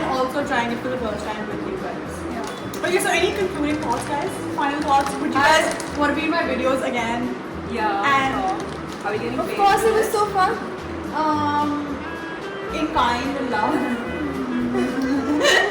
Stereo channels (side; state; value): both; identical; correlation 1.00